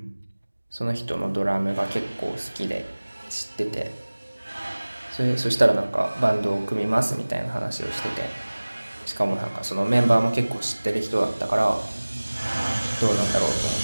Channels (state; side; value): inverted; both; correlation -1.00